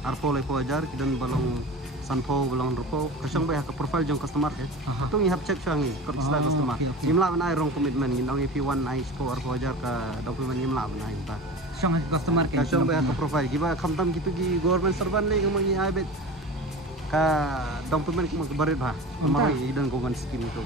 arpo lepo ajar ki dan belong sanpo belong rupo kesong bah ke profile jong customer ke tu ngi hab check sangi kerja customer imla benai rong commitment ngindong IP1 i score arpo ajar ka dokumen imla benai ta song customer ke kesong bah ke profile ki ba khamtam gitu ki government servant le ngi ai bet ka dokumen ki barit ba mari dan government scheme itu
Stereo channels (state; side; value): normal; both; correlation 0.34